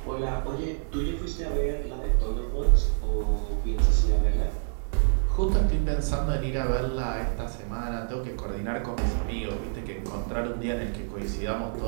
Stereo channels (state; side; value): silent; left; digital silence